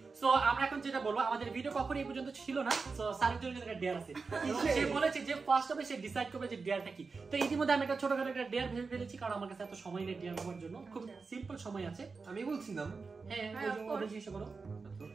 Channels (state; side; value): quieter; left; 4.5 dB